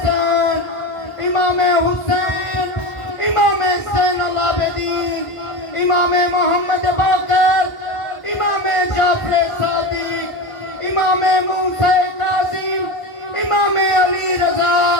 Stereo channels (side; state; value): right; late; 1.5 ms